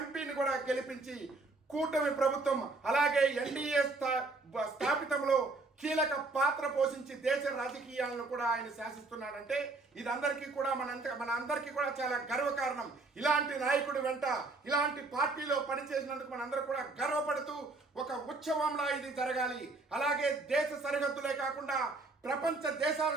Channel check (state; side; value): quieter; left; 3.5 dB